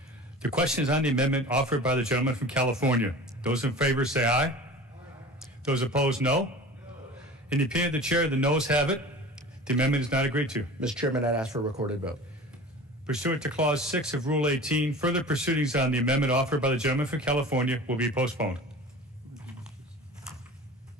The question is on the amendment offered by the gentleman from California. Those in favor say aye. Aye. Those opposed, no. In the opinion of the chair, the noes have it. The amendment is not agreed to. Mr. Chairman, I'd ask for a recorded vote. Pursuant to Clause 6 of Rule 18, further proceedings on the amendment offered by the gentleman from California will be postponed.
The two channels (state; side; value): normal; both; correlation 0.38